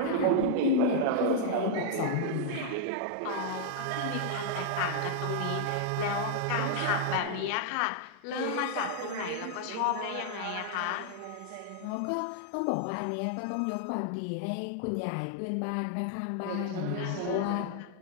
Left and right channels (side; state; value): both; different; correlation -0.01